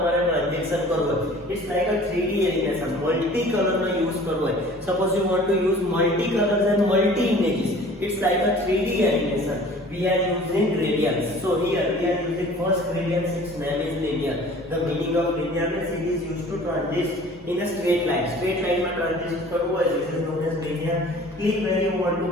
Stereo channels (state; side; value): normal; both; correlation 0.47